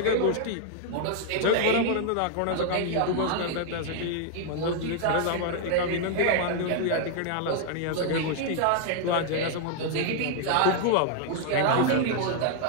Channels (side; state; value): both; different; correlation 0.00